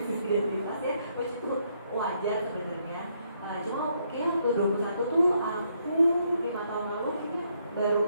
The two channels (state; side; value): inverted; both; correlation -0.74